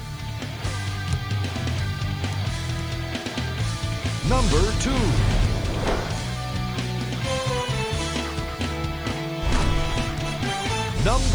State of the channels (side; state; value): left; noise; hiss, 25 dB below the sound